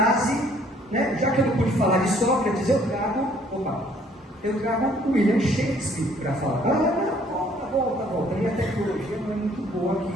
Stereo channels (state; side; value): normal; both; correlation 0.61